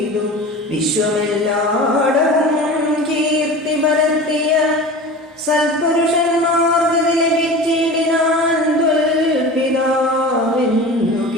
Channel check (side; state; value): both; normal; correlation 0.35